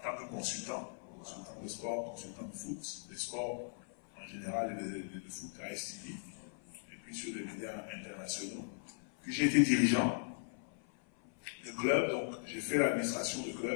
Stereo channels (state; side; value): silent; right; 52 dB below the other